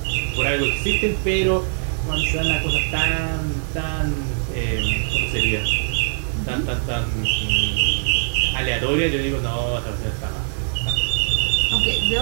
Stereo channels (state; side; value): silent; left; 60 dB below the other